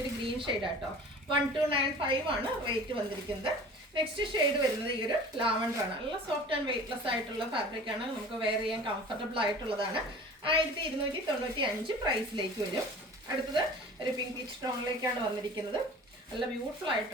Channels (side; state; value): both; normal; correlation 0.42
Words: ഒരു ഗ്രീൻ ഷെയ്ഡ് ആട്ടോ. 1295 ആണ് റേറ്റ് വന്നിരിക്കുന്നത്. നെക്സ്റ്റ് ഷെയ്ഡ് വരുന്നത് ഈ ഒരു ലാവൻഡർ ആണ്. നല്ല സോഫ്റ്റ് ആൻഡ് വെയ്റ്റ്ലെസ് ആയിട്ടുള്ള ഫാബ്രിക് ആണ്. നമുക്ക് വെയർ ചെയ്യാൻ കംഫർട്ടബിൾ ആയിട്ടുള്ളതാണ്. 1295 പ്രൈസിലേക്ക് വരും. അടുത്തത് ഒരു പിങ്ക് പീച്ച് ടോണിലേക്കാണ് വന്നിരിക്കുന്നത്. നല്ല ബ്യൂട്ടിഫുൾ